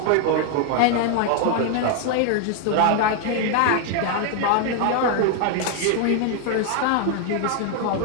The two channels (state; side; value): different; both; correlation 0.00